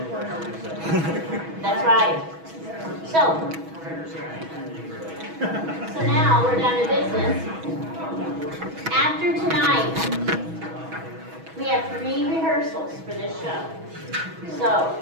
That's right. So now we're down to business. After tonight, we have 3 rehearsals for this show. So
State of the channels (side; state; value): left; late; 6.2 ms